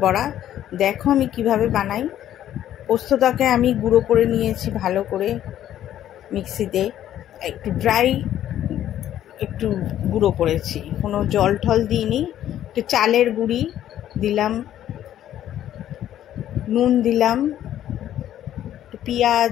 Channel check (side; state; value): right; quieter; 11.7 dB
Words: বড়া। দেখো আমি কিভাবে বানাই। পোস্তটাকে আমি গুঁড়ো করে নিয়েছি ভালো করে মিক্সিতে, একটু গুঁড়ো করেছি, কোনো জল টল দিইনি। একটু চালের গুঁড়ি দিলাম, নুন দিলাম, একটু